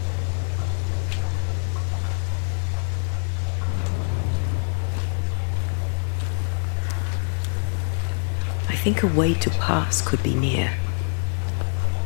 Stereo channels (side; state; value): right; silent; digital silence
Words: I think a way to pass could be near.